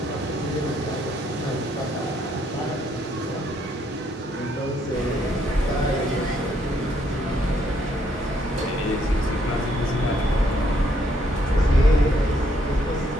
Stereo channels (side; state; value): both; normal; correlation 0.71